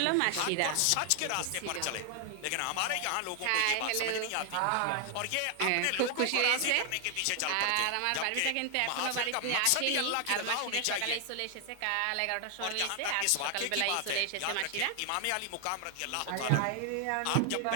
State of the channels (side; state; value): both; different; correlation 0.00